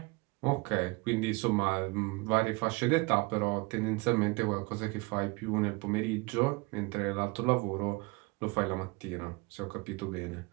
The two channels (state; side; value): quieter; left; 26.3 dB